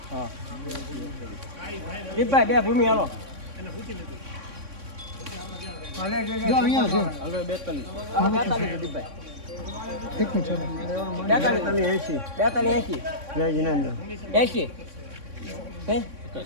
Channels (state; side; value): late; left; 3.6 ms